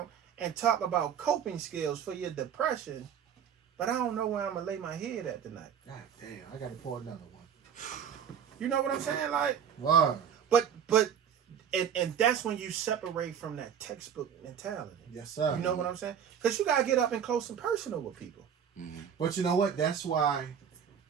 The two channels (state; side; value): quieter; left; 8.2 dB